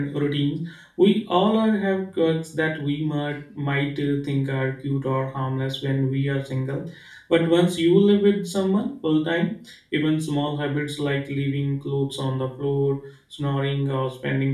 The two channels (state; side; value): identical; both; correlation 1.00